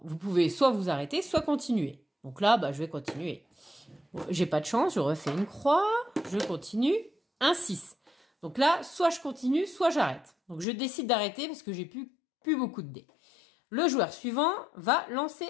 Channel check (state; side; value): drops out; right; at 10.7 s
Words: Vous pouvez soit vous arrêter, soit continuer. Donc là, je vais continuer. Bon, j'ai pas de chance, je refais une croix, je continue, un 6. Donc là, soit je continue, soit j'arrête. Donc je décide d'arrêter parce que j'ai plus beaucoup de dés. Le joueur suivant va lancer